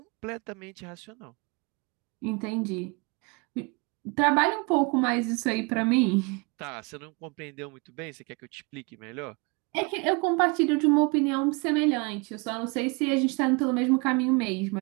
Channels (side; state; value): left; quieter; 29.9 dB